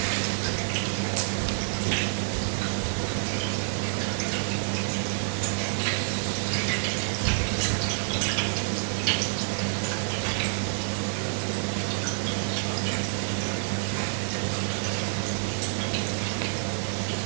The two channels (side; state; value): left; silent; digital silence